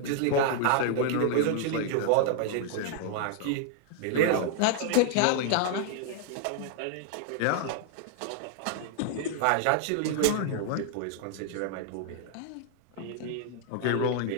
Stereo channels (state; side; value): different; both; correlation 0.00